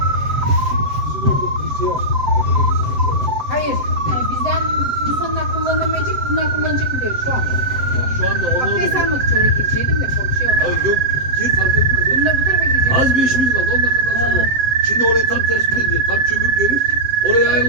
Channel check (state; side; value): late; left; 7.7 ms